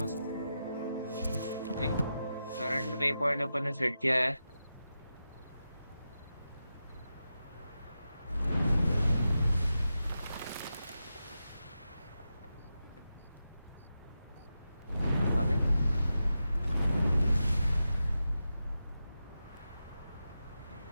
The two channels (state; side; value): inverted; both; correlation -0.90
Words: मस्त। एक करंट वे पॉइंट अपन ने सेट किया है। आगे